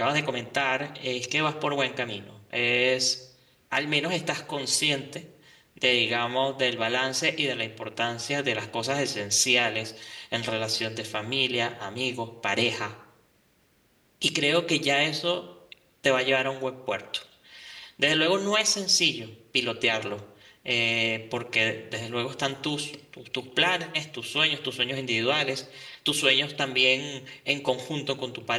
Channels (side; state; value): both; identical; correlation 1.00